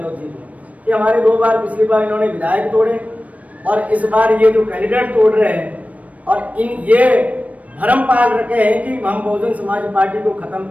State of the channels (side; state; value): left; late; 0.068 ms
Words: जी को कि हमारे 2 बार पिछली बार इन्होंने विधायक तोड़े और इस बार ये जो कैंडिडेट तोड़ रहे हैं, और ये भरम पाल रखे हैं कि हम बहुजन समाज पार्टी को खत्म